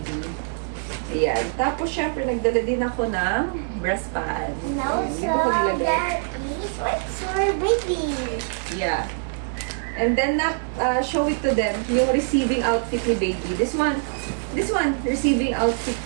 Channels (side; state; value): left; silent; 55 dB below the other